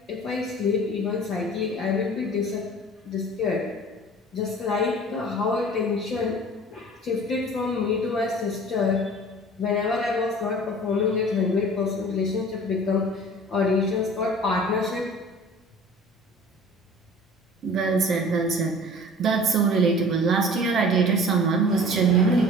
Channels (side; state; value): both; normal; correlation 0.44